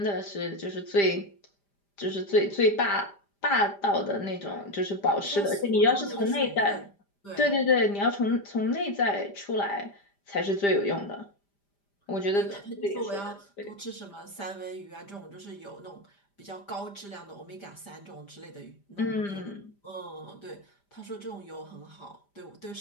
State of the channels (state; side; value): late; right; 5.0 ms